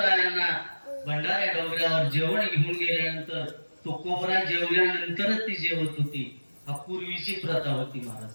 भंडाऱ्या डोंगरावर जेवण घेऊन गेल्यानंतर तुकोबरा जेवल्यानंतरच ती जेवत होती. हा पूर्वीची प्रथा होती महाराज.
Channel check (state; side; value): inverted; both; correlation -1.00